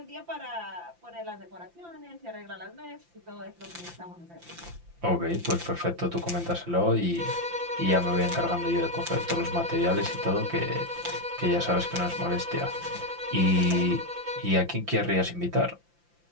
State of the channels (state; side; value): late; left; 5.8 ms